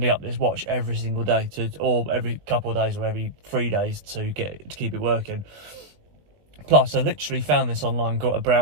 up this watch every single day or every couple of days or every 3 days to keep it working. Plus, I literally found this online, got a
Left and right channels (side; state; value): left; late; 20 ms